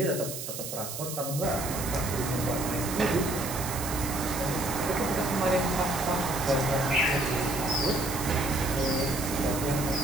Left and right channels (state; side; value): noise; right; hiss, 7 dB below the sound